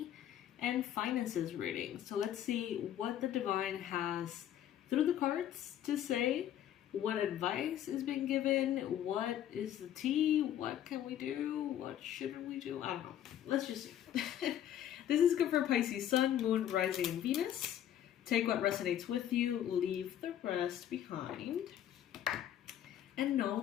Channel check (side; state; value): right; quieter; 10.9 dB